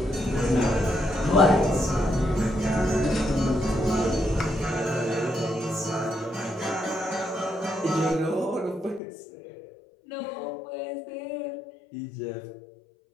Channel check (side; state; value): right; drops out; at 9.0 s